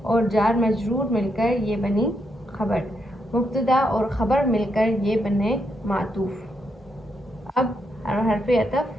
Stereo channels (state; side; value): normal; both; correlation 0.80